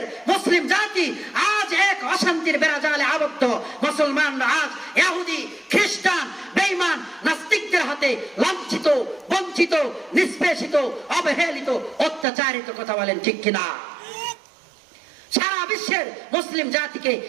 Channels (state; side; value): drops out; left; at 12.2 s